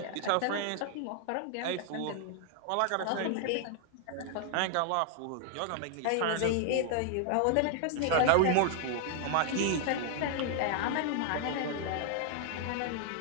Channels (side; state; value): both; different; correlation 0.00